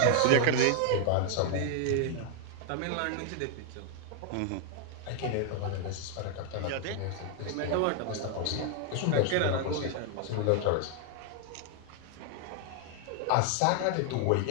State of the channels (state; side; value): different; both; correlation 0.00